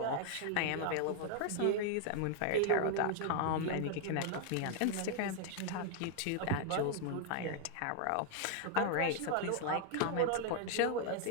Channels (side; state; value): both; different; correlation 0.00